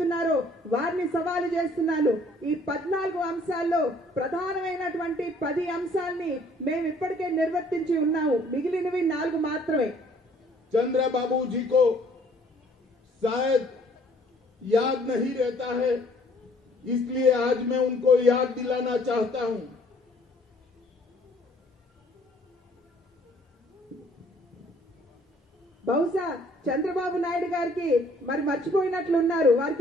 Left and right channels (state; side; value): normal; both; correlation 0.59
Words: వారిని సవాలు చేస్తున్నాను. ఈ 14 అంశాల్లో ప్రధానమైనటువంటి 10 అంశాలని మేము ఇప్పటికే నిర్వర్తించి ఉన్నాము, మిగిలినవి 4 మాత్రమే. चंद्रबाबू जी को शायद याद नहीं रहता है, इसलिए आज मैं उनको याद दिलाना चाहता हूं. బహుశా చంద్రబాబు నాయుడు గారికి మరి మర్చిపోయినట్లున్నారు,